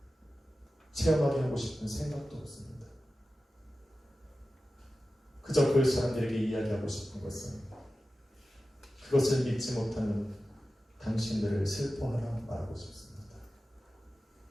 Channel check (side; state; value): both; normal; correlation 0.94